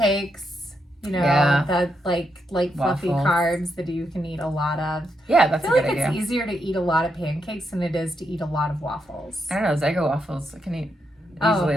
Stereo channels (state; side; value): normal; both; correlation 0.81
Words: you know, that like fluffy carbs that you can eat a lot of. Yeah, that's a good idea. I feel like it's easier to eat a lot of pancakes than it is to eat a lot of waffles. I don't know, Eggo waffles I can eat easily